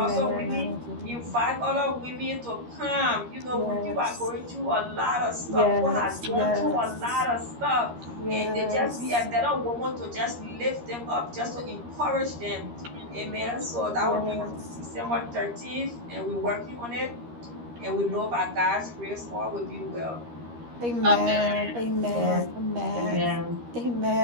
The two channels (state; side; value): late; left; 13 ms